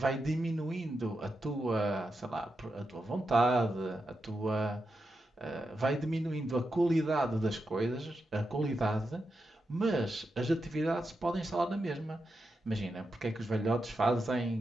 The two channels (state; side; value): normal; both; correlation 0.87